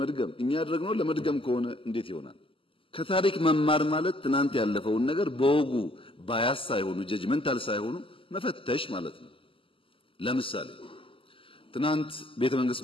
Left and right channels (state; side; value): late; right; 0.26 ms